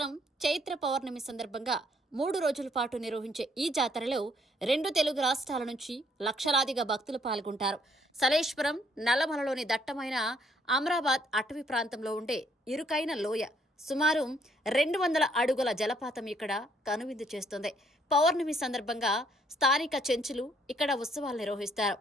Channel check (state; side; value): normal; both; correlation 0.67